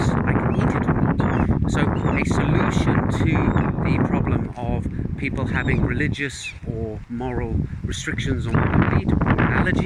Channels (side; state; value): both; identical; correlation 1.00